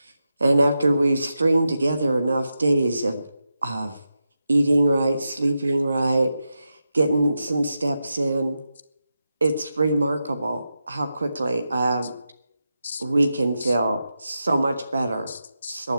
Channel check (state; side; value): inverted; both; correlation -0.89